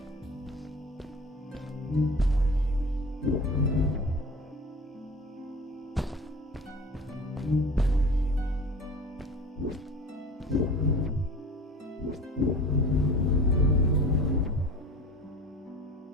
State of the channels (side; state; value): both; normal; correlation 0.39